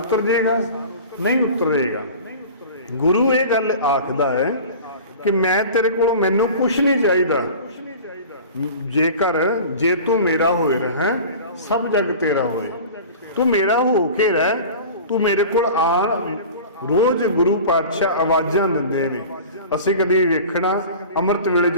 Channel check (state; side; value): inverted; both; correlation -0.38